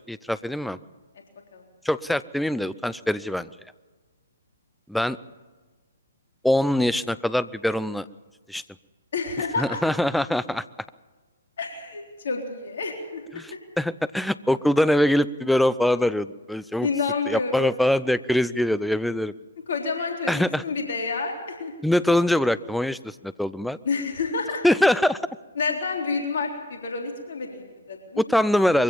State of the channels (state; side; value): normal; both; correlation 0.73